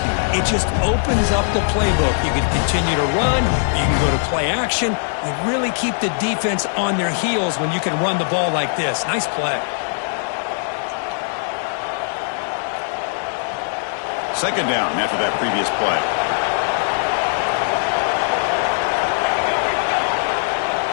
it just opens up the playbook. You can continue to run. You can go to play action. You really keep the defense on their heels when you can run the ball like this. Nice play. 2nd down after that previous play.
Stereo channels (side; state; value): right; silent; digital silence